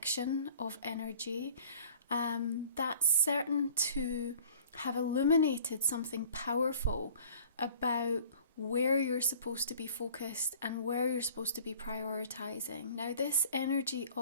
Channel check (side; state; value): both; inverted; correlation -0.50